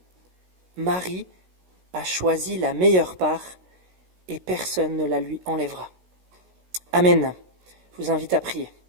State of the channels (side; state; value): left; late; 16 ms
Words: Marie a choisi la meilleure part et personne ne la lui enlèvera. » Amen. Je vous invite à prier.